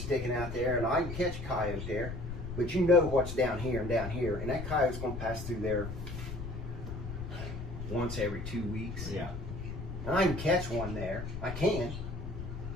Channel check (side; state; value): left; noise; rumble, 7 dB below the sound